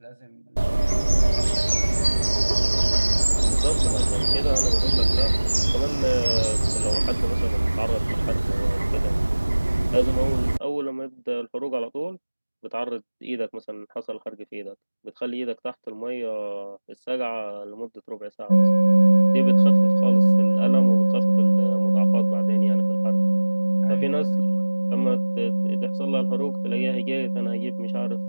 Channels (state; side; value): inverted; both; correlation -1.00